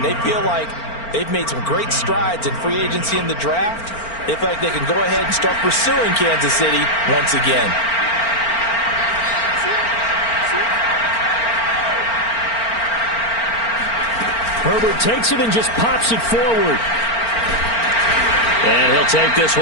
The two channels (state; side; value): late; right; 4.4 ms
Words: they feel like they've made some great strides in free agency in the draft. They feel like they can go ahead and start pursuing Kansas City once again. Herbert takes it and just pops it forward. And he'll take this